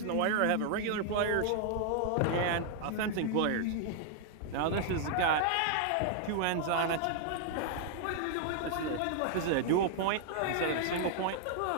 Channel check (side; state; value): both; different; correlation 0.00